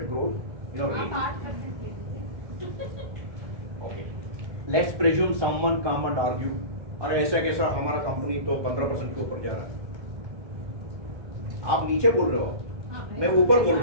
growth. Okay. Let's presume someone come and argue, अरे ऐसा कैसा हमारा company तो 15% के ऊपर जा रहा है. आप नीचे बोल रहे हो, मैं ऊपर बोल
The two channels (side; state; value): left; late; 1.2 ms